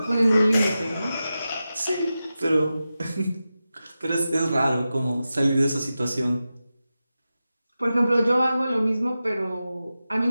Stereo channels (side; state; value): both; inverted; correlation -0.93